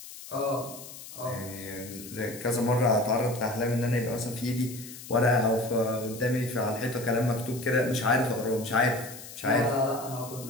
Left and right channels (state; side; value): noise; left; hiss, 14 dB below the sound